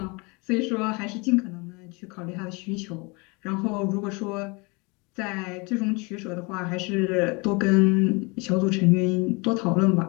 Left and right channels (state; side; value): quieter; right; 28.4 dB